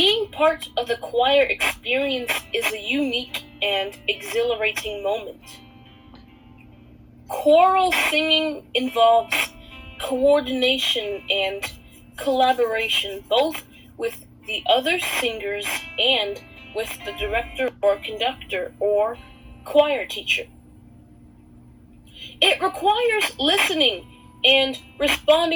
part of the choir experience is a unique and exhilarating moment. Choral singing involves coordination and collaboration, both with the other singers and with the director or conductor or choir teacher. It requires listening and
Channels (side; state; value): both; identical; correlation 1.00